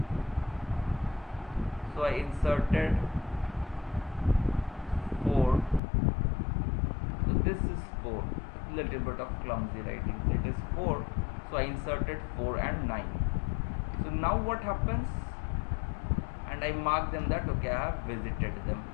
so I inserted 4, so this is 4, little bit of clumsy writing, so it is 4, so I inserted 4 and 9. So now what happens, and I mark them that okay, I have visited them.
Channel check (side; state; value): right; drops out; at 5.8 s